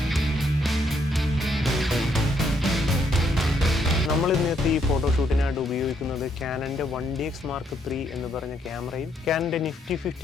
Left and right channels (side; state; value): both; normal; correlation 0.73